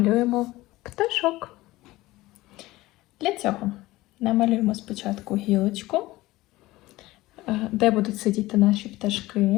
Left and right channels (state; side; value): quieter; right; 18.5 dB